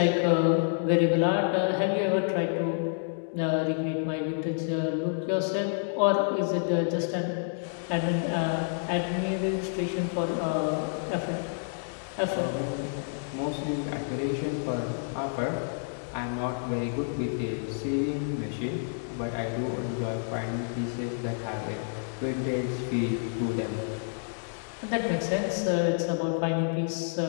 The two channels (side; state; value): right; silent; 58 dB below the other